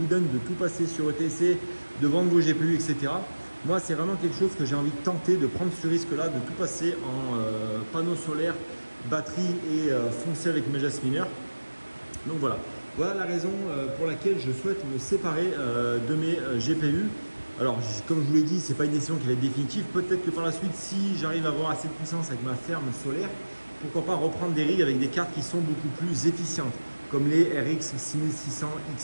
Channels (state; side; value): inverted; both; correlation -1.00